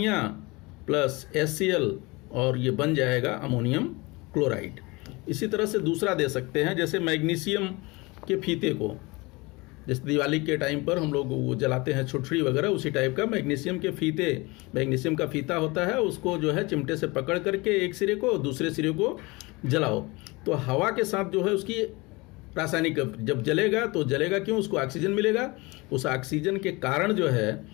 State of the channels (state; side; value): quieter; right; 24.5 dB